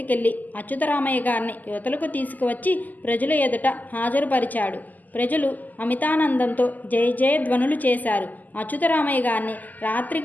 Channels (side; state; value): right; late; 0.082 ms